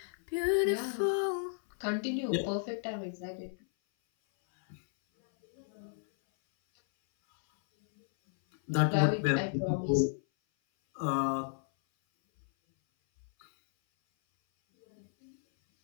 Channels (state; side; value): silent; right; 56 dB below the other